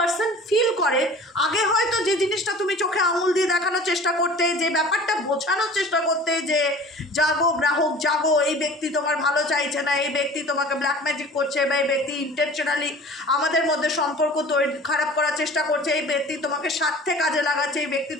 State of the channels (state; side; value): normal; both; correlation 0.43